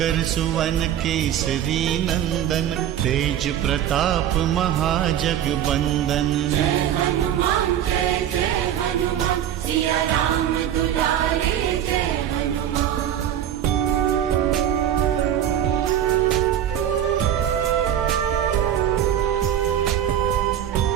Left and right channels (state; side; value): quieter; left; 10.5 dB